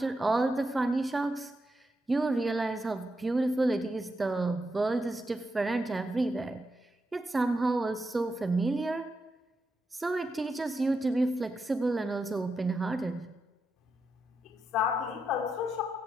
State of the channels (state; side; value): normal; both; correlation 0.85